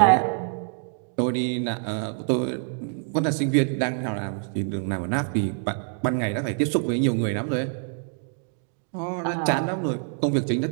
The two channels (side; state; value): left; silent; 59 dB below the other